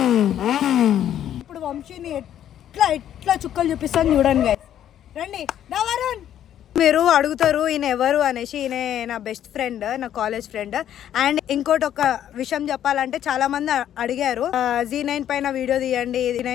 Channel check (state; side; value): quieter; right; 10.7 dB